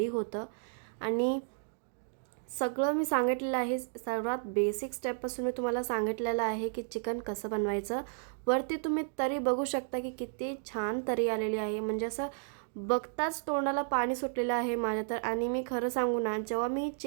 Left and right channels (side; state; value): left; silent; digital silence